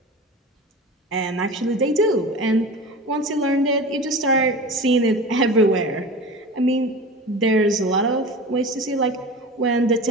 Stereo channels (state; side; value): normal; both; correlation 0.33